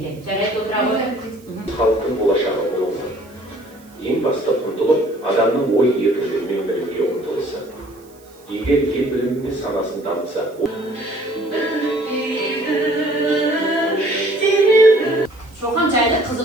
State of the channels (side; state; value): right; noise; hiss, 28 dB below the sound